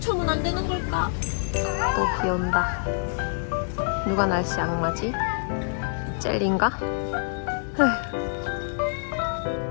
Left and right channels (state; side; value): silent; right; digital silence